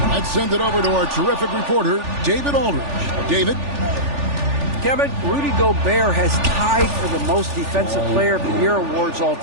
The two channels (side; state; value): left; late; 3.4 ms